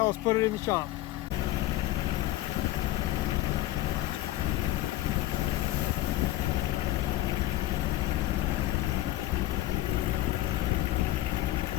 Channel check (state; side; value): quieter; right; 15.8 dB